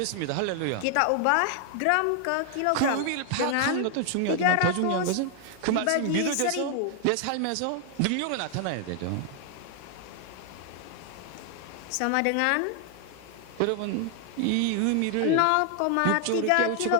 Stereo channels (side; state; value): both; different; correlation 0.00